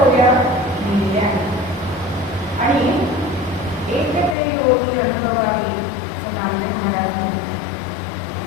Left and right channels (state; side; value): drops out; right; at 4.4 s